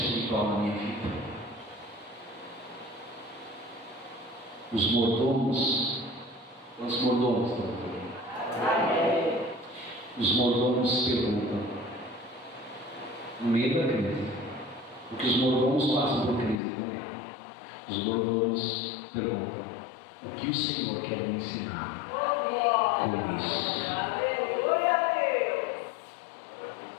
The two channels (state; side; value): drops out; right; at 16.6 s